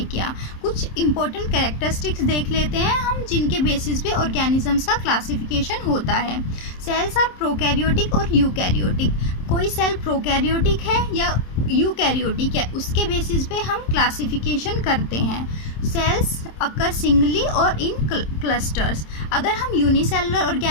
किया। कुछ इंपॉर्टेंट कैरेक्टरिस्टिक्स देख लेते हैं हम जिनके बेसिस पे ऑर्गेनिजम्स का क्लासिफिकेशन होता है। सेल्स आर प्रोकैरियोटिक और यूकैरियोटिक। कोई सेल प्रोकैरियोटिक है या यूकैरियोटिक है, उसके बेसिस पे हम क्लासिफिकेशन करते हैं। सेल्स अकर सिंगली और इन क्लस्टर्स। अगर हम यूनिसेलुलर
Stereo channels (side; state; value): right; late; 27 ms